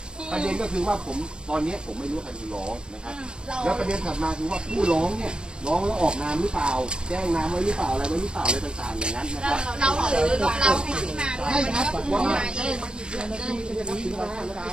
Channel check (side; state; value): left; late; 0.053 ms